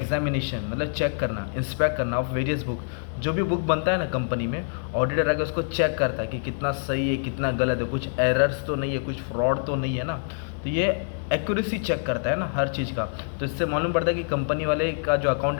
मतलब चेक करना, इंस्पेक्ट करना ऑफ वेरियस बुक। जो भी बुक बनता है ना कंपनी में, ऑडिटर आके उसको चेक करता है कि कितना सही है, कितना गलत है, कुछ एरर्स तो नहीं है, कुछ फ्रॉड तो नहीं है ना। तो ये एक्यूरेसी चेक करता है ना हर चीज़ का। तो इससे मालूम पड़ता है कि कंपनी वाले का जो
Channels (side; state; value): right; silent; digital silence